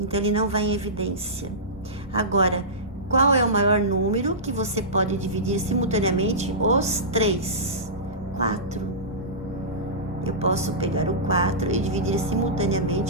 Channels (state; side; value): normal; both; correlation -0.18